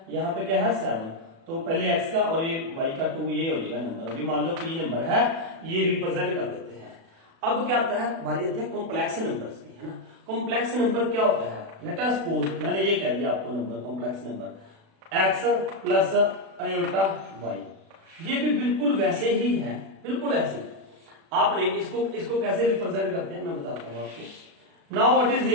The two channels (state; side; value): late; left; 36 ms